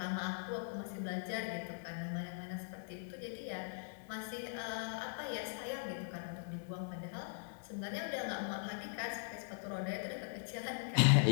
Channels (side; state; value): right; silent; digital silence